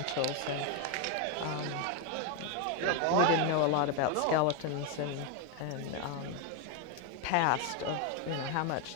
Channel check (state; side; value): different; both; correlation 0.01